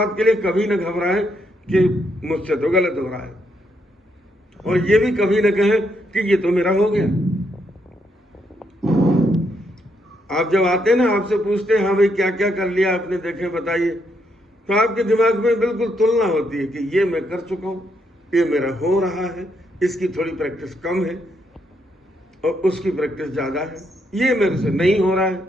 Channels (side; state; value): both; normal; correlation 0.77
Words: के लिए कभी न घबराएं कि मुझसे तो गलत हो रहा है, और ये भी कभी न कहें कि ये तो मेरा हो गया। आप जब आते हैं ना, आपसे पूछते हैं हाँ भाई क्या क्या कर लिया आपने, देखे बताइए, तो आपके दिमाग में बिल्कुल तुलना होती है कि ये मैं कर चुका हूं, ये मेरा हो रहा है, इसकी थोड़ी प्रैक्टिस कम है और उसकी प्रैक्टिस ज्यादा है, ये मेरे से नहीं हो रहा